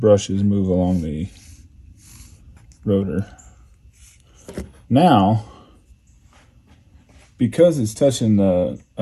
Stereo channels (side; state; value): both; identical; correlation 1.00